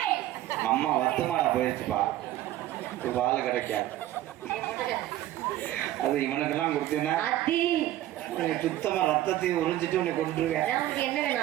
அம்மா வத்துமாடா போயிடுச்சுப்பா பால் கிடைக்காது அது இவனுக்கெல்லாம் கொடுத்தீங்கன்னா சுத்தமா ரத்தத்தையும் உறிஞ்சிட்டு உன்னை கொண்டுருவேன். என்ன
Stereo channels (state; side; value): quieter; left; 14.1 dB